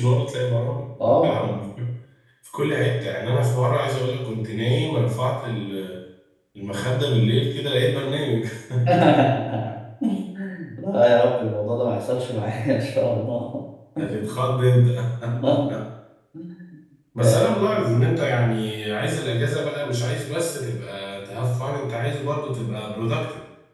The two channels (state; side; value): identical; both; correlation 1.00